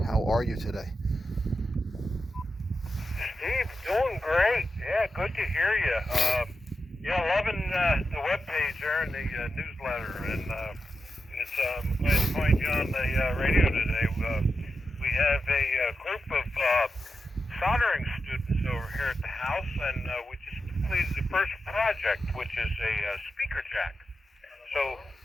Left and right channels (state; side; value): normal; both; correlation 0.89